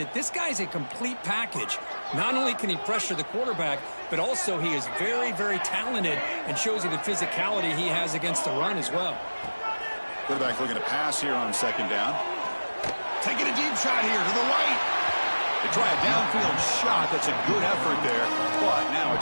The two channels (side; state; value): both; inverted; correlation -1.00